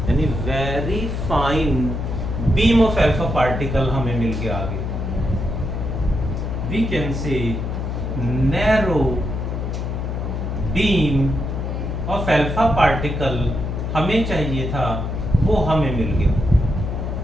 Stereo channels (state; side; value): noise; left; hum, 3 dB below the sound